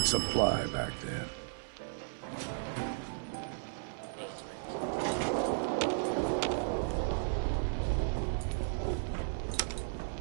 supply back then.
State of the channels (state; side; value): silent; left; digital silence